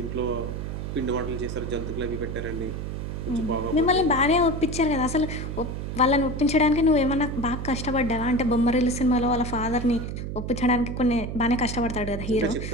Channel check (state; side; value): noise; right; hum, 5 dB below the sound